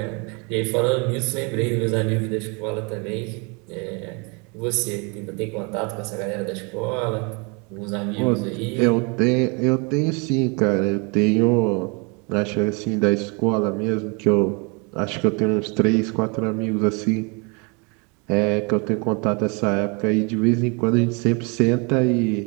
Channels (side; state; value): left; quieter; 31.8 dB